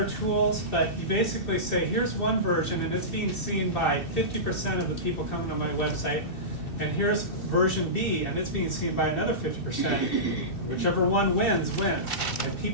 tools, but you basically say, here's one version and it's being seen by 50% of the people coming to my website, and here's version B and it's being seen by another 50%. Whichever one wins, wins. And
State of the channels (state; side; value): late; right; 2.7 ms